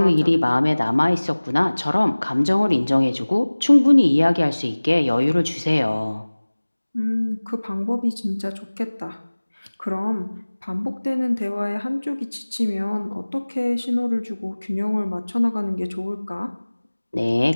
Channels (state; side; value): inverted; both; correlation -1.00